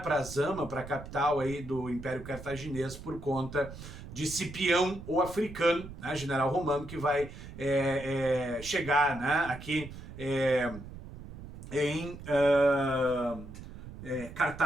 para Zama, para a capital aí do Império Cartaginês, por conta de Cipião, o africano, né, general romano, que vai chegar, né, aqui em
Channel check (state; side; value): noise; right; rumble, 13 dB below the sound